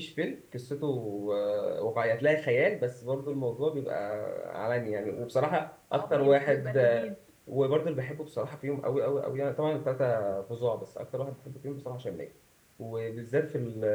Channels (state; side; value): identical; both; correlation 1.00